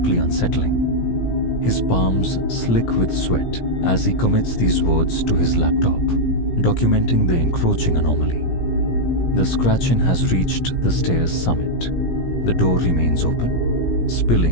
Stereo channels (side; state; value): right; late; 17 ms